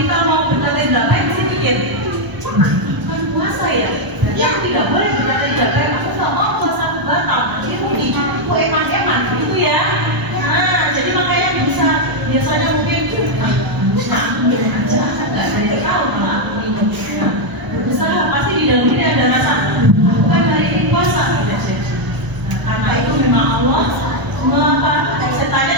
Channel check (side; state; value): left; late; 1.0 ms